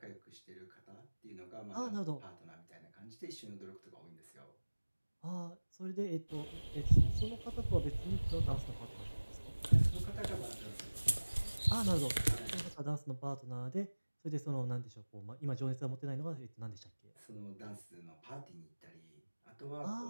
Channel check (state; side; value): inverted; both; correlation -1.00